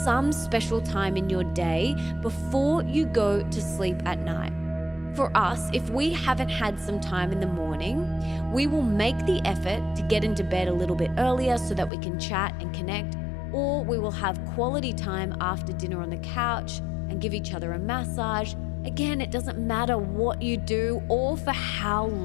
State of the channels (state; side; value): drops out; right; at 11.9 s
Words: special time in your day before you go to sleep at night. For us, if we haven't had some time in the morning, we will make the effort to get into bed a little bit earlier so that we can chat and connect, or we will have quality time after dinner on the couch and give each other a massage. Again, it doesn't matter what you do or for how